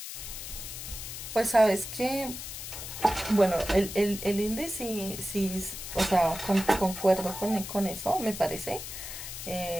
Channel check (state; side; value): noise; left; hiss, 9 dB below the sound